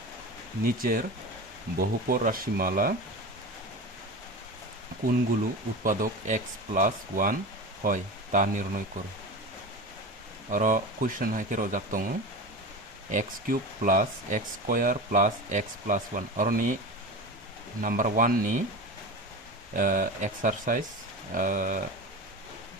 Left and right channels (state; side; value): normal; both; correlation 0.28